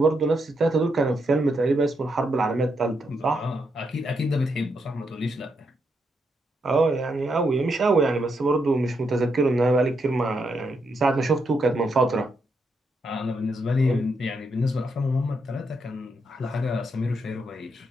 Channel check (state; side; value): normal; both; correlation 0.80